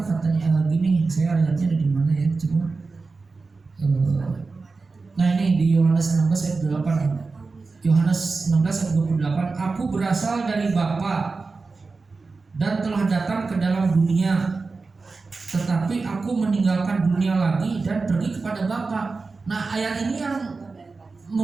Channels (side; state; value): left; quieter; 4.1 dB